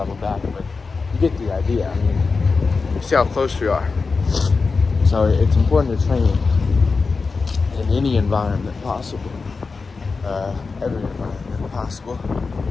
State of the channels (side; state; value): right; quieter; 4.4 dB